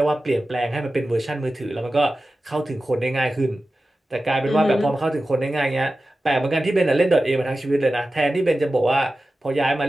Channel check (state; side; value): normal; both; correlation 0.94